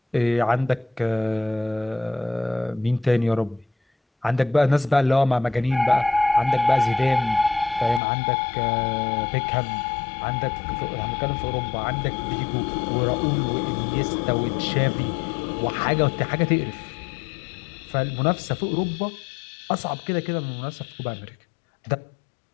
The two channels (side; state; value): right; drops out; at 8.0 s